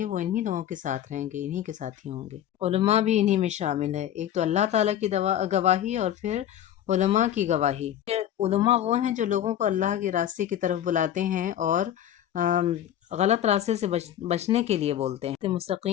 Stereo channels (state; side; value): quieter; right; 11.0 dB